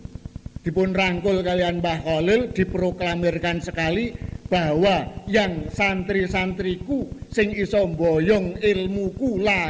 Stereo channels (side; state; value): both; identical; correlation 1.00